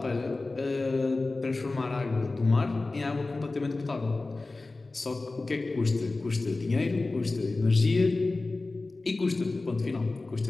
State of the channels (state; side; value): quieter; right; 3.3 dB